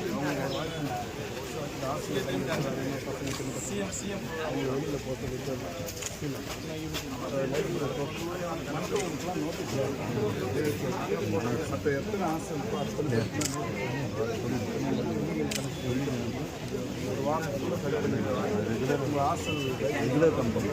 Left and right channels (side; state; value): both; identical; correlation 1.00